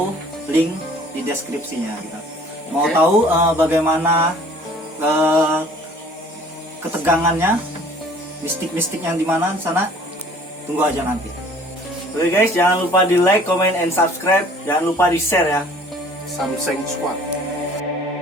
link di deskripsinya gitu. Mau tahu bagaimana ketegangannya, mistik-mistik yang di mana sana? Tunggu aja nanti. Oke guys, jangan lupa di like, comment, and subscribe. Jangan lupa di share ya. Samseng Squad.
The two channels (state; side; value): normal; both; correlation 0.52